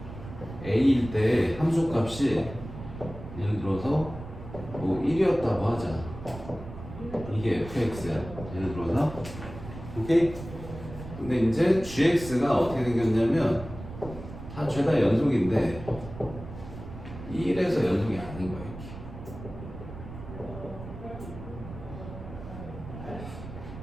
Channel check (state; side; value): noise; right; rumble, 12 dB below the sound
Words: A일 때 함수값이 예를 들어서 뭐 1이었다고 하자. 이게 fx야. 예를 들어서 오케이? 근데 이제 gx가 어떻게 생겼냐면 다 죄다 연속인데 1에서 연속이 아닌 거야.